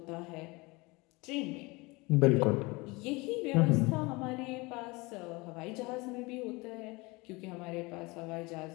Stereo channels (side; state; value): right; quieter; 24.7 dB